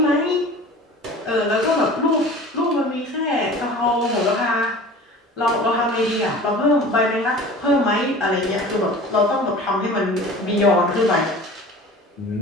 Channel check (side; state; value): both; normal; correlation 0.40